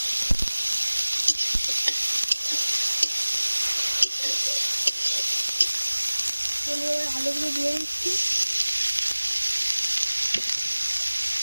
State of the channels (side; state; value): both; inverted; correlation -1.00